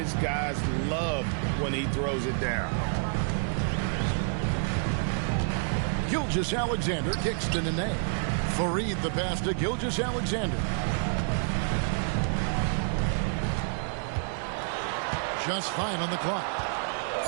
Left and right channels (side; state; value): left; silent; 56 dB below the other